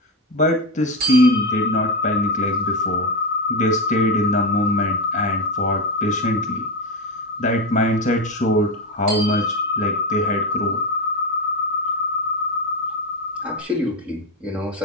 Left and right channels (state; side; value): normal; both; correlation 0.14